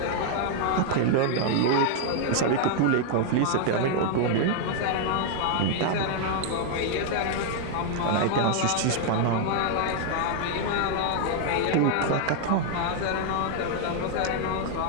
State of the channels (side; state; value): both; different; correlation 0.00